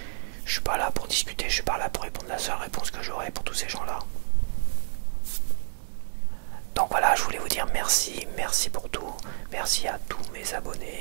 Je suis pas là pour discuter, je suis pas là pour répondre la seule réponse que j'aurai pour tous ces gens-là. Donc voilà, je voulais vous dire merci, merci pour tout. Merci à tous mes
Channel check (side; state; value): left; silent; 59 dB below the other